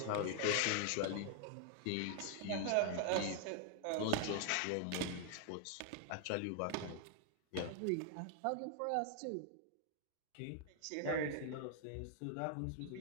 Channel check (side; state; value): both; different; correlation 0.00